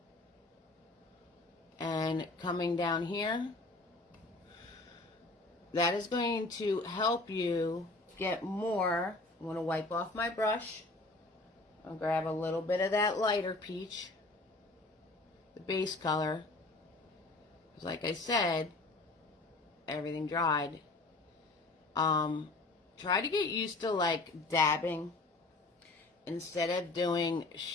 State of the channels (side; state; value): right; quieter; 3.1 dB